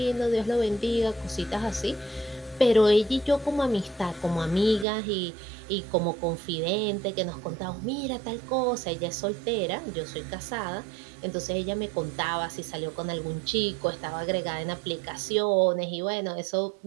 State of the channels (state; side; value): drops out; left; at 4.9 s